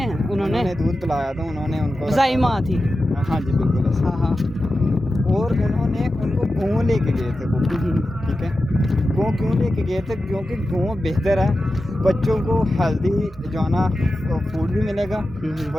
दूध पिलाया था, उन्होंने उनको ज़ाई माँ थी। हाँ जी बिल्कुल। हाँ हाँ, और उन्होंने उनको गाँव लेके गए थे वो, ठीक है। गाँव क्यों लेके गए थे? क्योंकि गाँव बेहतर है, बच्चों को हेल्दी जो है ना फूड भी मिलेगा,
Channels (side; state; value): both; normal; correlation 0.92